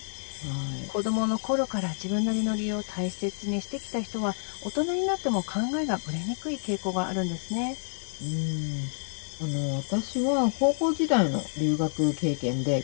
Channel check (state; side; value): silent; right; 59 dB below the other